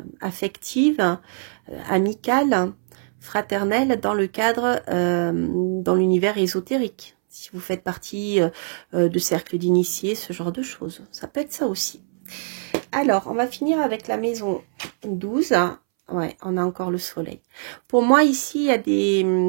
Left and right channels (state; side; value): silent; left; 63 dB below the other